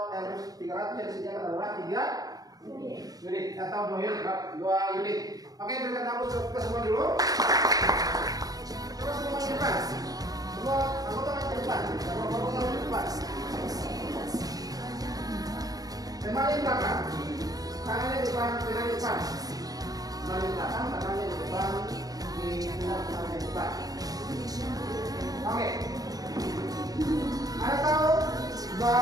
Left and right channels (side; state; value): left; late; 0.18 ms